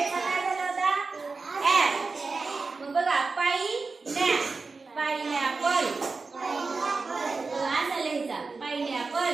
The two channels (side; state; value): left; quieter; 4.2 dB